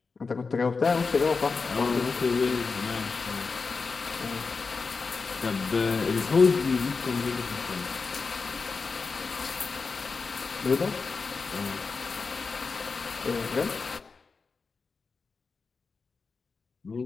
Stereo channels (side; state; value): right; quieter; 4.6 dB